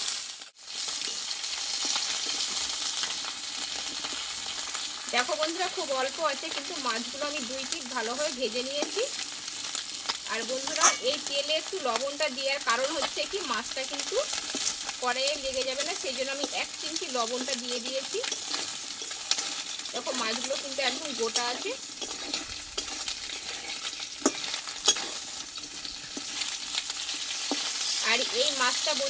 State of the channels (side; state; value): both; identical; correlation 1.00